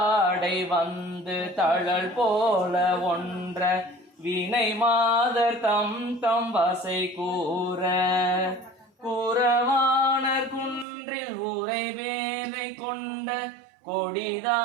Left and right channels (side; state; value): left; drops out; at 10.9 s